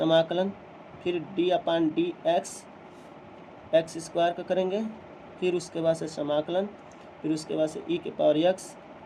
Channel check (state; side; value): identical; both; correlation 1.00